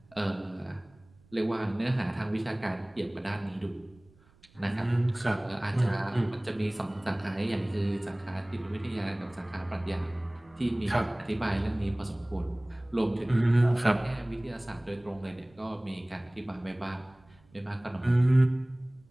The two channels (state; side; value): noise; right; rumble, 29 dB below the sound